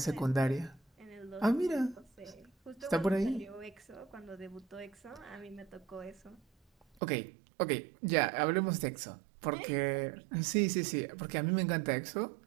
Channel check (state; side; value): drops out; left; at 7.0 s